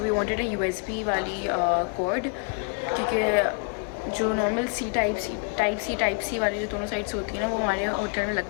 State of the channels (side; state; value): right; quieter; 39.0 dB